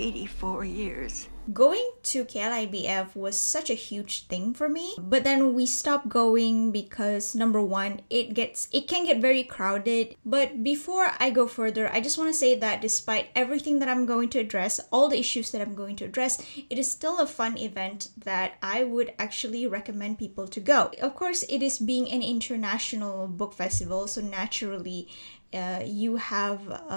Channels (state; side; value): inverted; both; correlation -1.00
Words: years. Going to KLIBF was such a huge thing for me, but then we stopped going because number one, it can get very crowded. But before I go further, I just want to say that despite everything that I'm going to address, all the issues that I'm going to address, it is still a fun event that I would actually recommend people to go. Of course, it is being an international book festival, so naturally you have